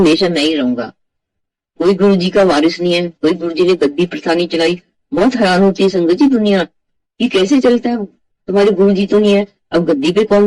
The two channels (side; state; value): both; identical; correlation 1.00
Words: मैं ही रहूंगा। कोई गुरु जी का वारिस नहीं है, कोई गुरु जी ने गद्दी प्रथा नहीं चलाई। बहुत हैरान होती है संगत जी दुनिया, ये कैसे चलता है, तुम्हारे गुरु जी तो नहीं है, अब गद्दी पे